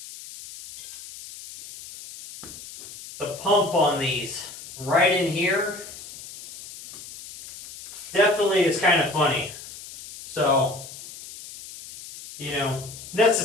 The pump on these right in here definitely is kind of funny. So,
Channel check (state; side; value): noise; left; hiss, 14 dB below the sound